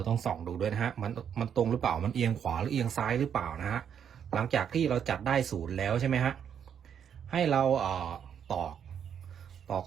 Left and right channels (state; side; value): quieter; left; 8.3 dB